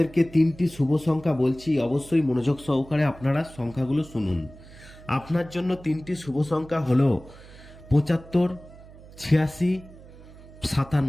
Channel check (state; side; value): noise; right; hum, 20 dB below the sound